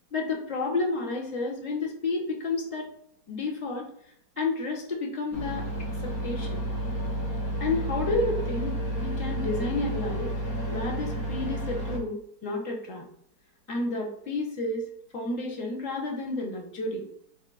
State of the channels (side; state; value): left; late; 3.8 ms